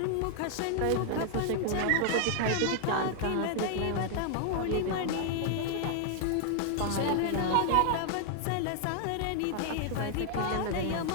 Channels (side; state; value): both; different; correlation 0.00